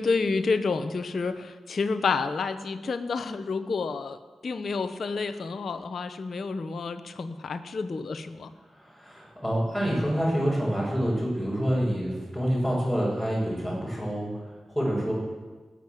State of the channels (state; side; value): normal; both; correlation 0.92